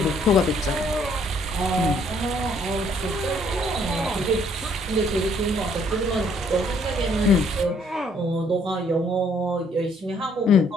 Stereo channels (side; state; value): both; normal; correlation 0.65